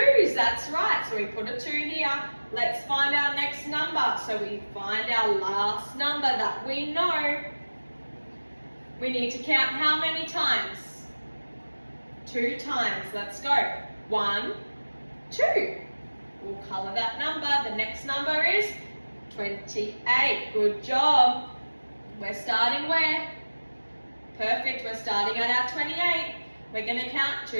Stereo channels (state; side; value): inverted; both; correlation -1.00